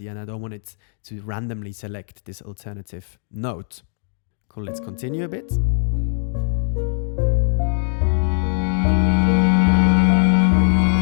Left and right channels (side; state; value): right; silent; digital silence